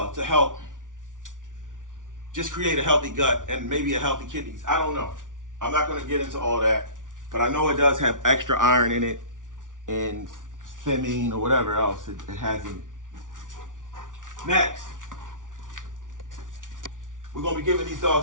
to help just create a healthy gut and maybe a healthy kidneys. I don't know. I'm not going to get into all that, but I know it does have extra iron in it and thiamine or whatever else it has in it. Next, we're going to be giving these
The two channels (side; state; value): left; late; 0.88 ms